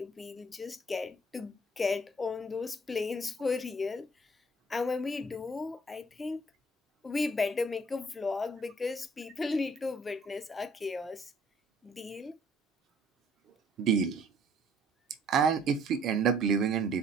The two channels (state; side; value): normal; both; correlation 0.59